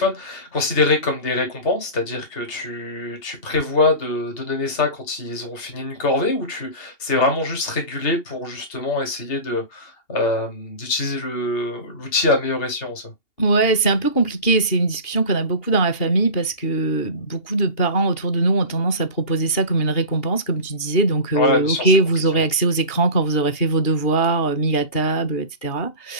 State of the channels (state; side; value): late; right; 2.8 ms